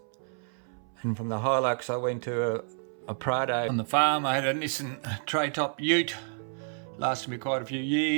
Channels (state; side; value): silent; left; 58 dB below the other